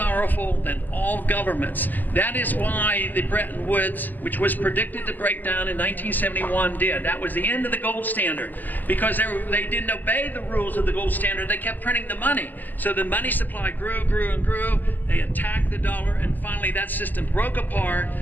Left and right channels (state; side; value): late; right; 0.086 ms